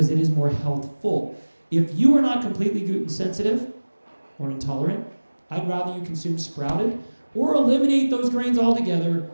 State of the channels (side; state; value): both; inverted; correlation -1.00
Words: it is more healthful. If you are not completely gluten sensitive or intolerant, I'd rather you consume sprouted or eliminate those grains altogether.